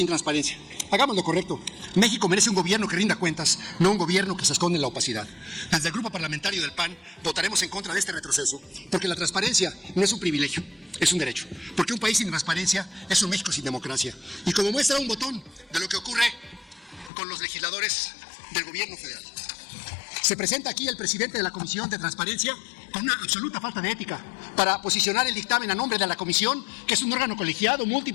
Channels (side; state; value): right; drops out; at 17.1 s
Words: transparencia. Hagamos lo correcto. México merece un gobierno que rinda cuentas, no un gobierno que se esconde en la opacidad. Desde el grupo parlamentario del PAN votaremos en contra de este retroceso, porque la transparencia no es un privilegio, es un derecho. Porque un país sin transparencia es un México sin democracia. Y como muestra un botón de lo que ocurre con los legisladores del gobierno federal. Se presenta aquí el presidente de la Comisión de Transparencia con una absoluta falta de ética para posicionar el dictamen a nombre de la comisión, que es un órgano colegiado,